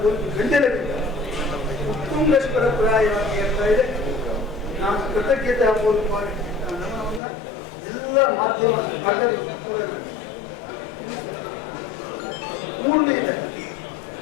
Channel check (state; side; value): drops out; right; at 7.2 s